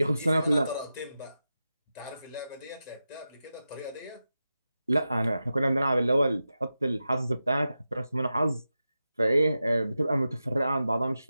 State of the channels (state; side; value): inverted; both; correlation -0.91